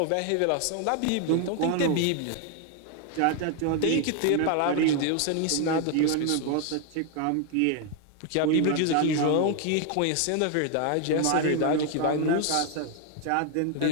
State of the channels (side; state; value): both; different; correlation 0.00